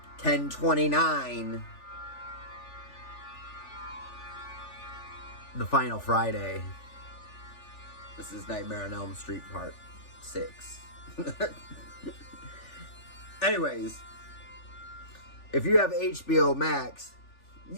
10/29. The Final Friday. This is Nightmare on Elm Street Part 6. Anyways, if you have HBO Max,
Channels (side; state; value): right; late; 3.4 ms